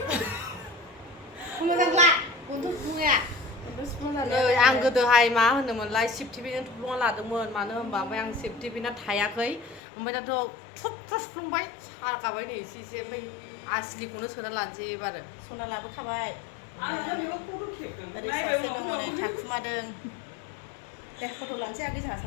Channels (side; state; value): right; drops out; at 9.8 s